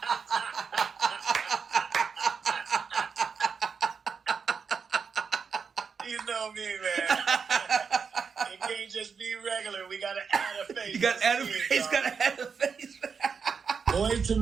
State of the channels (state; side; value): quieter; left; 5.9 dB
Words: You know me, man. It can't just be regular. We gotta add a face. You gotta add a face. Gotta add a face. Boyz II